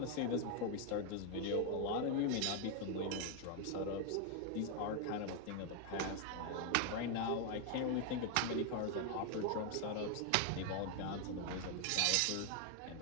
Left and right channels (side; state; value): both; different; correlation 0.01